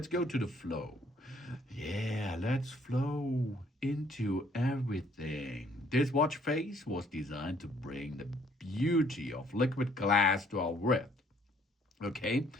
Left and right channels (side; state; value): both; normal; correlation 0.63